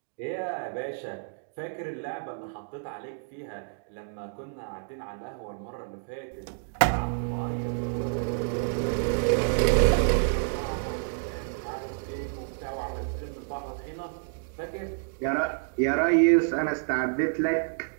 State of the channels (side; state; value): left; silent; digital silence